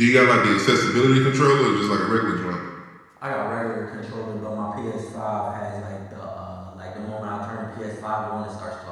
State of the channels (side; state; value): both; identical; correlation 1.00